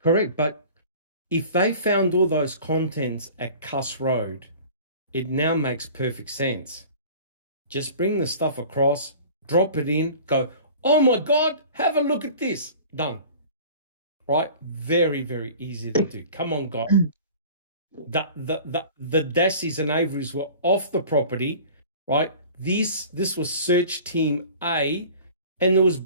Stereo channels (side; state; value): both; inverted; correlation -0.43